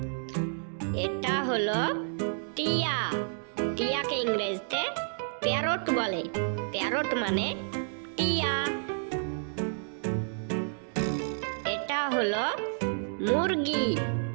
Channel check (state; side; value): silent; left; digital silence